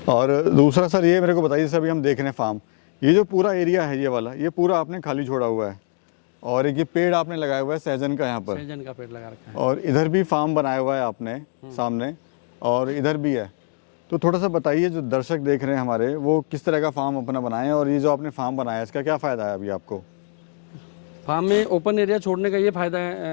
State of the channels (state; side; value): silent; right; 60 dB below the other